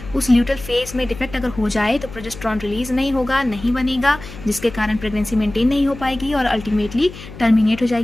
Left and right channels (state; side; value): noise; left; hum, 15 dB below the sound